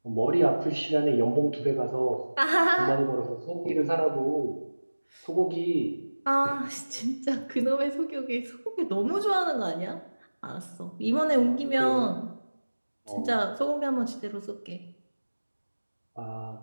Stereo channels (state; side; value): inverted; both; correlation -1.00